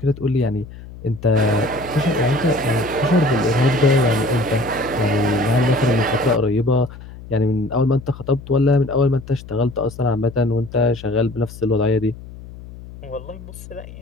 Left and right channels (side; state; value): left; noise; hum, 16 dB below the sound